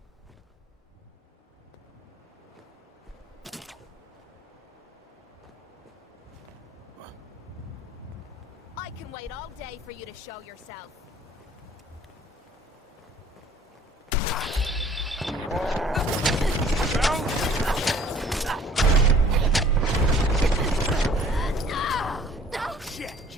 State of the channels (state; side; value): normal; both; correlation 0.53